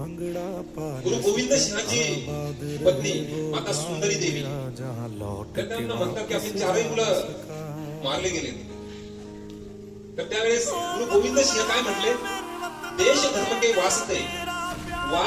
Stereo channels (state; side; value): identical; both; correlation 1.00